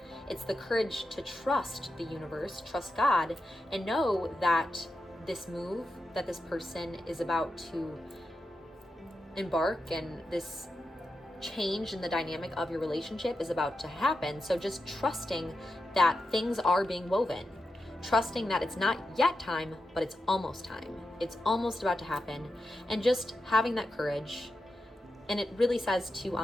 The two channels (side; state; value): both; normal; correlation 0.89